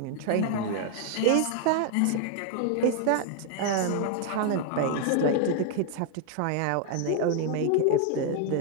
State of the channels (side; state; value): both; different; correlation 0.00